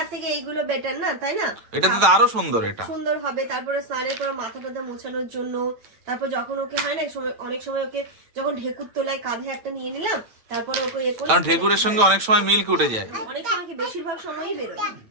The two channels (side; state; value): left; late; 9.0 ms